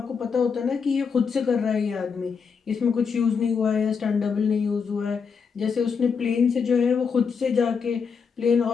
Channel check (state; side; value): quieter; right; 5.9 dB